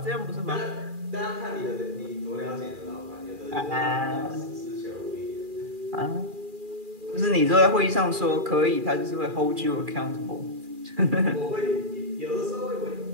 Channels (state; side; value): late; left; 2.4 ms